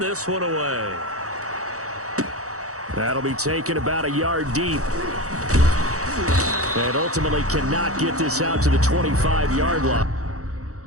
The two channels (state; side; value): late; left; 0.65 ms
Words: this one away. That'll be taken about a yard deep. And ultimately cannot get this out to the 25-yard line.